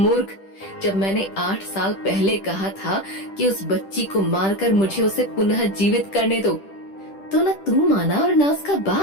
जब मैंने 8 साल पहले कहा था कि उस बच्ची को मारकर मुझे उसे पुनः जीवित करने दो, तो न तू माना और न उसका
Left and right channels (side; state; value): right; late; 10 ms